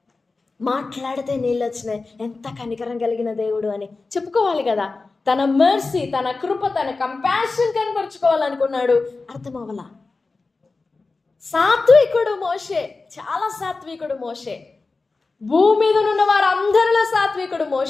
మాట్లాడితే నీళ్ళు వచ్చినాయి, ఎంత కనికరం కలిగిన దేవుడు అని చెప్పుకోవాలి కదా. తన మెర్సీ, తన కృప, తన కంపాషన్ కనబరుచుకోవాలనుకున్నాడు, అర్థమవలా. సాత్వికుడు మోషే, చాలా సాత్వికుడు మోషే, భూమి మీద ఉన్న వారందరిలో సాత్వికుడు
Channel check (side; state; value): right; quieter; 3.8 dB